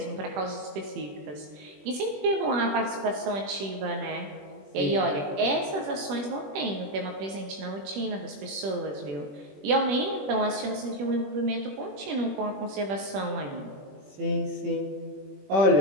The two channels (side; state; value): left; late; 21 ms